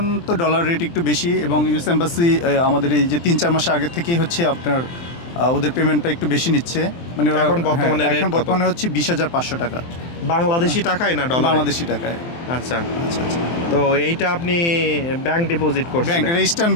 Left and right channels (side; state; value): right; late; 23 ms